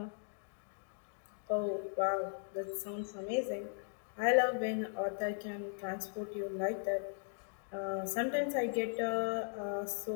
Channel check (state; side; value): silent; right; digital silence